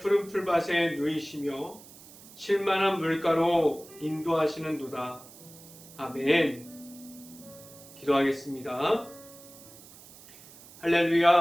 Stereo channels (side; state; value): right; noise; hiss, 20 dB below the sound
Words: 풀밭에 누이시며 쉴만한 물가로 인도하시는도다. 아멘. 기도하겠습니다.